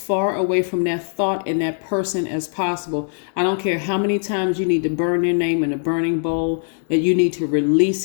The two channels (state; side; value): silent; right; digital silence